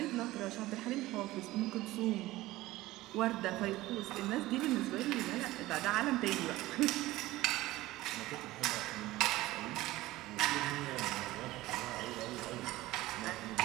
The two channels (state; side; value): quieter; left; 17.6 dB